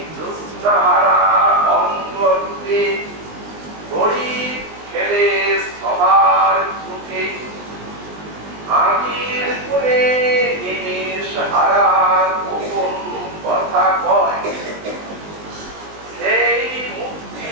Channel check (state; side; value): late; left; 19 ms